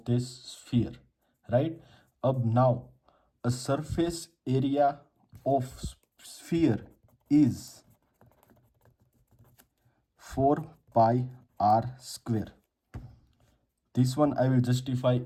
this sphere, right. अब now a surface area of sphere is 4 pi r square. This one I will justify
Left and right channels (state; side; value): identical; both; correlation 1.00